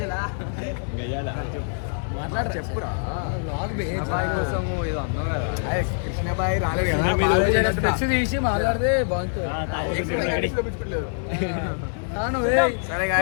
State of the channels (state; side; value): silent; right; digital silence